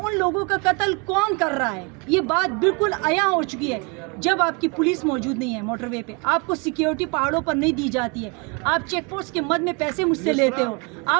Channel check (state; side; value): quieter; left; 31.2 dB